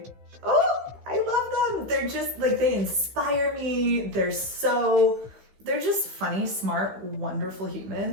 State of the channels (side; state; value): left; late; 15 ms